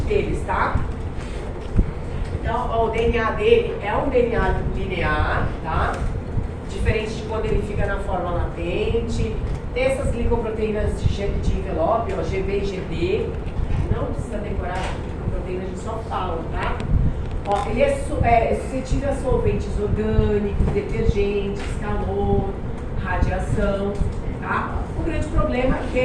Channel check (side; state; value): both; identical; correlation 1.00